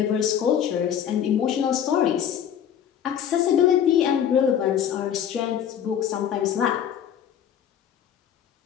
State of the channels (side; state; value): right; quieter; 9.3 dB